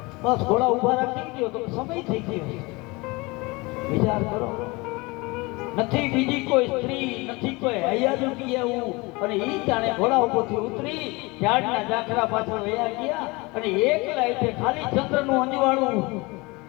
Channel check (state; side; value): quieter; right; 24.8 dB